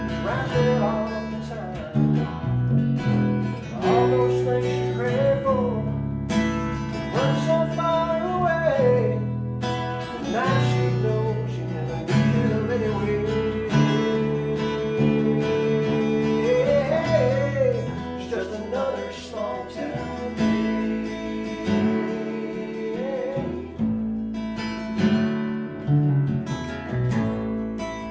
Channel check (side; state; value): both; identical; correlation 1.00